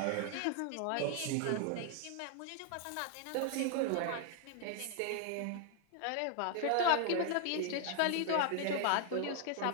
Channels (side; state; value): both; different; correlation 0.00